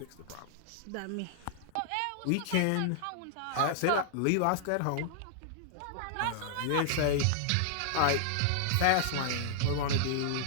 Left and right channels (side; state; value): both; different; correlation -0.01